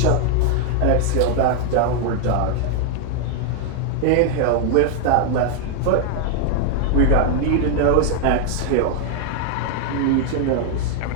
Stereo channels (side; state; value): both; different; correlation 0.00